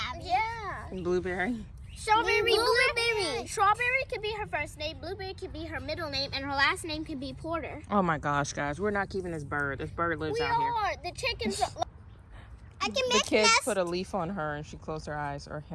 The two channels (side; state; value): both; identical; correlation 1.00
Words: Yeah. Blueberry? Strawberry, Blueberry. Strawberry could be her first name. Blueberry could be her middle name, and her last name could be Porter. Oh my gosh, guys, we're not keeping this bird. This bird lives out here. The chickens. The kids put a leaf on her, and she closed her eyes, or